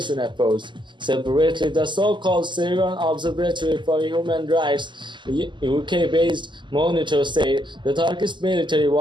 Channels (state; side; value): late; left; 0.23 ms